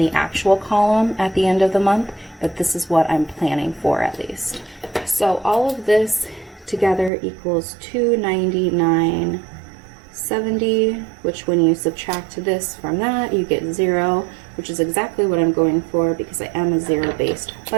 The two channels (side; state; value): left; drops out; at 7.1 s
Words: actual column at the end of the month, but this is what I'm planning for at least. So all of this together equals $299.70, which when you subtract this from that, you get 0, which is exactly what I'm going for because I am a zero-based